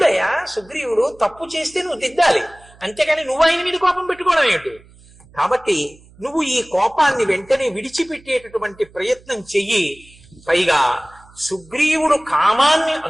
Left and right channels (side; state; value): right; noise; hum, 26 dB below the sound